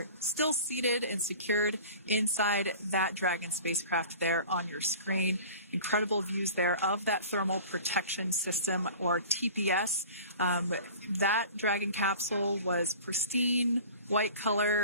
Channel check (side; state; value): both; inverted; correlation -0.41